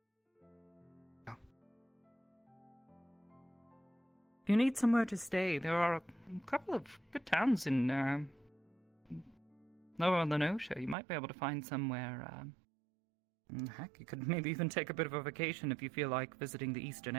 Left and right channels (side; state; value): left; drops out; at 11.0 s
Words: If you need somewhere to stay, there are a couple of good towns in Lower Lenosha. You might be able to find somewhere. Heck, you could maybe even take a bit of a vacation if you feel like visiting the Eastern